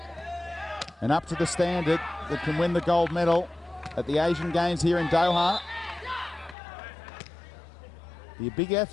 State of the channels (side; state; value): right; drops out; at 6.6 s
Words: and up to the standard that can win the gold medal at the Asian Games here in Doha. Be a big